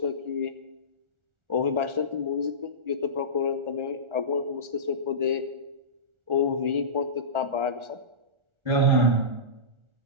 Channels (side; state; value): left; late; 1.4 ms